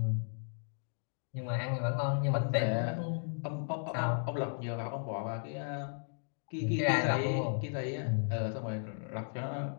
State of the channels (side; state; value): right; silent; digital silence